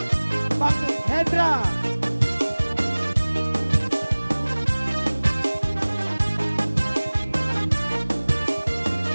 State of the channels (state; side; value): inverted; both; correlation -1.00